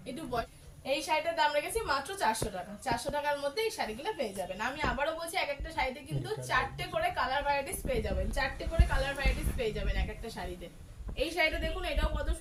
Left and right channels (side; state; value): both; identical; correlation 1.00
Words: একটু এই শাড়িটার দাম রেখেছি মাত্র 400 টাকা। 400 টাকার মধ্যে এই শাড়িগুলো পেয়ে যাবেন। আমি আবারও বলছি, এক একটা শাড়িতে কিন্তু 4টে করে কালার ভ্যারাইটিস পেয়ে যাবেন, 4টে করে কালার ভ্যারাইটিস পেয়ে যাবেন এক একটা শাড়িতে। এই শাড়িটা দেখুন, এটাও কত